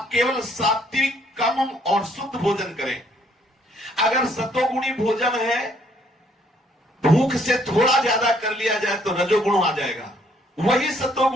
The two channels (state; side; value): normal; both; correlation 0.65